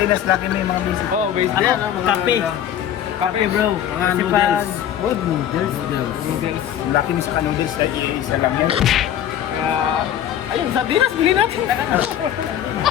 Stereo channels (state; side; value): quieter; right; 10.5 dB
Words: Lucky May, mga basic. Oh, basic yan. Ano? Mga Kape. Kape bro. Mga Kasi noodles. Wood noodles. Noodles. Yung Lucky May sa noodles, ay isa lang yun. Kaya, ayun, sardinas, bilhin natin.